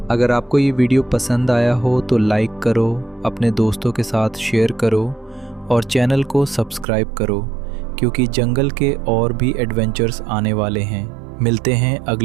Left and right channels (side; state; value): left; drops out; at 6.9 s